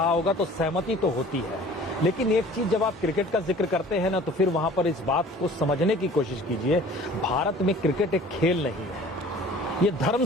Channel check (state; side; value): normal; both; correlation 0.47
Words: होगा तो सहमति तो होती है। लेकिन एक चीज, जब आप क्रिकेट का जिक्र करते हैं ना, तो फिर वहां पर इस बात को समझने की कोशिश कीजिए, भारत में क्रिकेट एक खेल नहीं है, ये धर्म